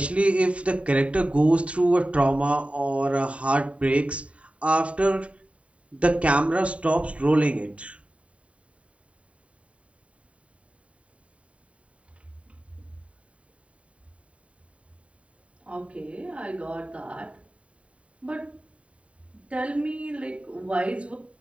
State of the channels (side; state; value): left; late; 0.064 ms